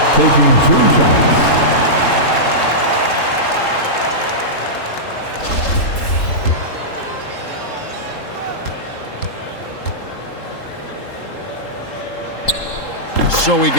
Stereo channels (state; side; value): late; right; 3.8 ms